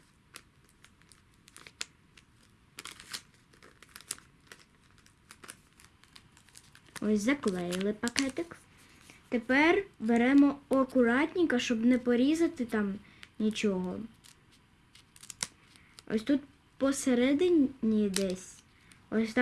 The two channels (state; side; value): identical; both; correlation 1.00